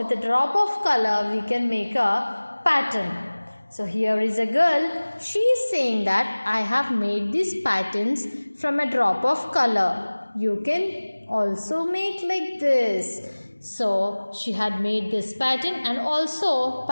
a drop of color, we can make a pattern. So here is a girl. She is saying that I have made these patterns from a drop of color. You can also make like this. So she had made this pattern and also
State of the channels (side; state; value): both; inverted; correlation -1.00